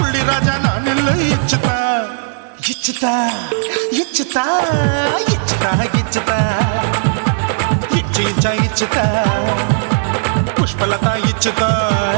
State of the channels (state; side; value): silent; left; digital silence